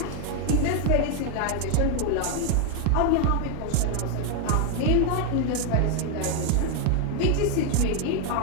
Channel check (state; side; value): different; both; correlation 0.00